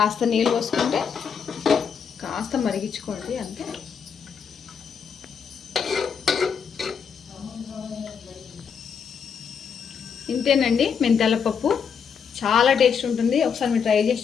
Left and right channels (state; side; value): quieter; right; 6.7 dB